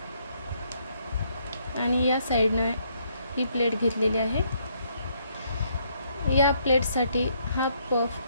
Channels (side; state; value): both; inverted; correlation -0.71